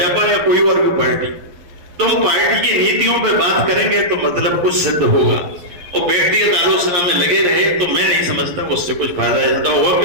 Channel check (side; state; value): left; late; 11 ms